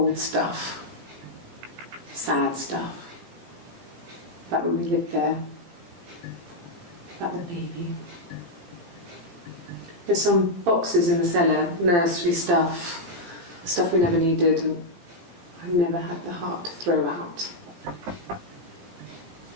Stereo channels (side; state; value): left; late; 17 ms